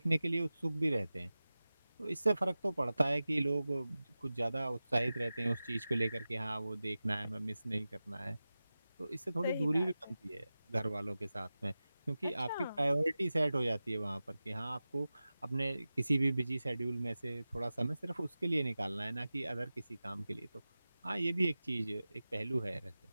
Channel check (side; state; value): both; inverted; correlation -0.96